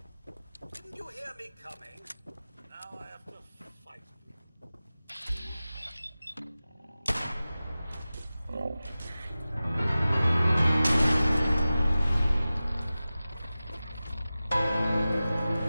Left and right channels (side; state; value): both; inverted; correlation -0.96